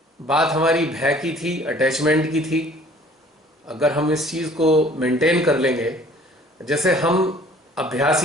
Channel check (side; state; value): both; normal; correlation 0.53